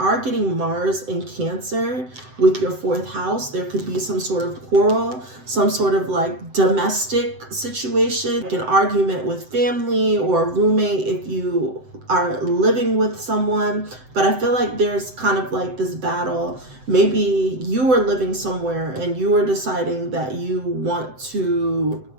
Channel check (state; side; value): late; left; 7.8 ms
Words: getting Mars in Cancer with your 4th house. There could be some sort of quarrel, some sort of like domestic situation, like an argument with family or a roommate if you are living with someone, but I feel like there's kind of like this battle. Maybe you were living somewhere and you were deciding that you want to